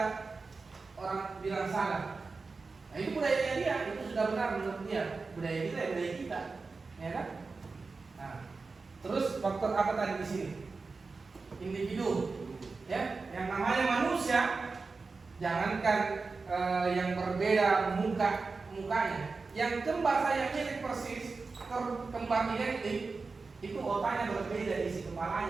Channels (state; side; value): quieter; left; 4.2 dB